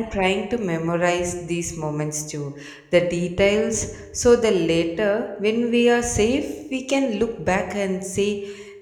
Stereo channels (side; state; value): both; identical; correlation 1.00